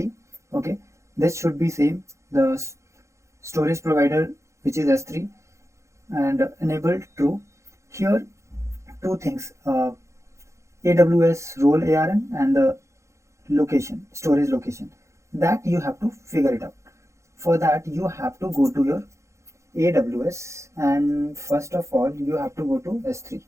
Okay, this should be same. The storage provider, which is S3, and enabled true. Here two things, AWS role ARN and the location, storage location, that you have to figure it out. For that you have to go to your AWS, and first of all you have to go to S3.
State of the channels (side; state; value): left; late; 0.14 ms